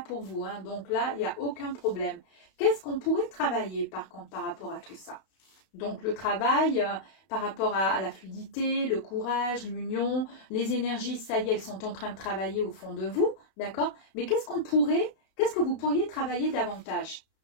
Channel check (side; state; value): right; late; 31 ms